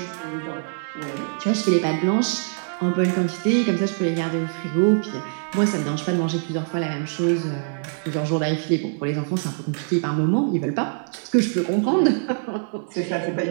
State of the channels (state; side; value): silent; left; digital silence